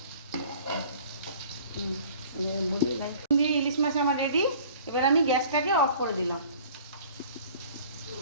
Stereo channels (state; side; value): inverted; both; correlation -0.49